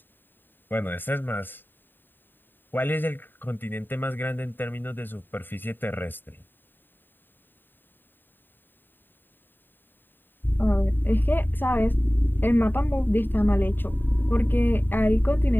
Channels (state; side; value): late; right; 0.093 ms